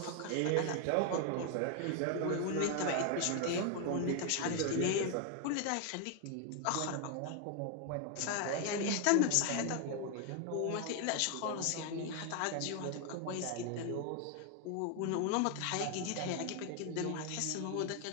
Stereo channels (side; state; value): both; different; correlation 0.01